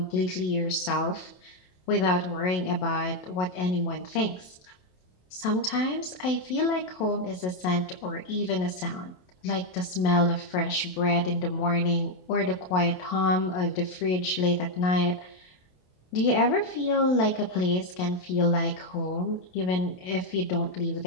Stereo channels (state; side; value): late; right; 27 ms